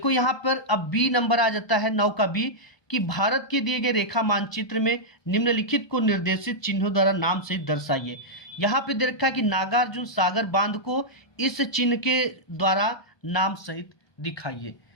यहाँ पर अब बी नंबर आ जाता है, 9 का बी, कि भारत के दिए गए रेखा मानचित्र में निम्नलिखित को निर्देशित चिन्हों द्वारा नाम से दर्शाइए। यहाँ पे दे रखा है कि नागार्जुन सागर बांध को इस चिन्ह के द्वारा नाम सहित दिखाइए।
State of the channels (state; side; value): late; right; 1.2 ms